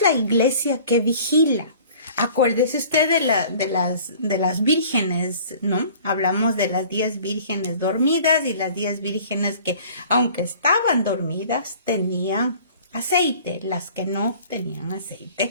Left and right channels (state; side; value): inverted; both; correlation -0.48